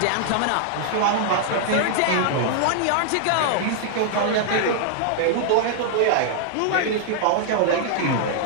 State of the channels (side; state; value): both; different; correlation -0.01